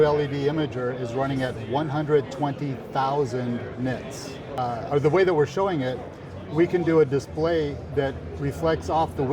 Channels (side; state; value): both; identical; correlation 1.00